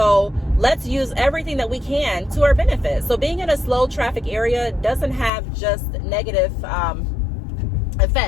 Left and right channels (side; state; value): right; drops out; at 5.3 s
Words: let's use everything that we can to our benefit. So being in a slow traffic area doesn't have just negative